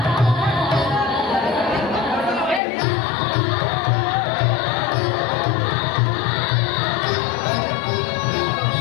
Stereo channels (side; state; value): right; drops out; at 2.6 s